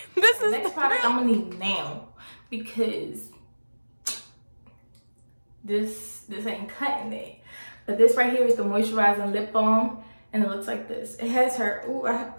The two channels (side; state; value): both; inverted; correlation -1.00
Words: this is next product I'm gonna need now, because this ain't cutting it. But this right here is the moisturizing lip balm, and it looks like this. It has her, ooh, I have